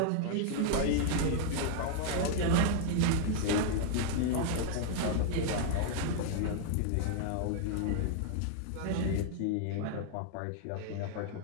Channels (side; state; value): both; different; correlation -0.01